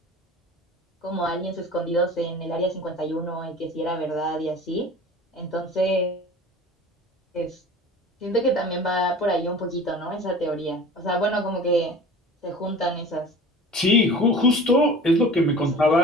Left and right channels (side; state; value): both; normal; correlation 0.40